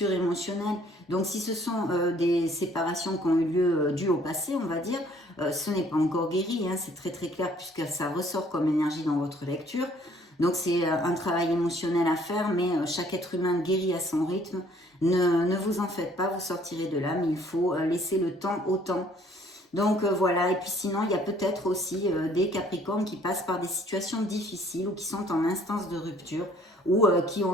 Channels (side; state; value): both; normal; correlation 0.59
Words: émotionnelles. Donc si ce sont des séparations qui ont eu lieu dues au passé, on va dire, ce n'est pas encore guéri, c'est très très clair puisque ça ressort comme énergie dans votre lecture. Donc c'est un travail émotionnel à faire, mais chaque être humain guérit à son rythme. Ne vous en faites pas, vous sortirez de là, mais il faut laisser le temps au temps. Donc voilà, et puis sinon il y a peut-être aussi des Capricornes qui passent par des situations difficiles ou qui sont en instance de rupture ou qui